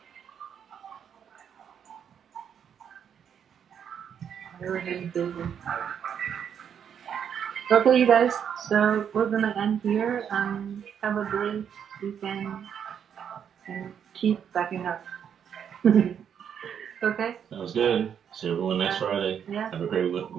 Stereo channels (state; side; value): quieter; left; 8.2 dB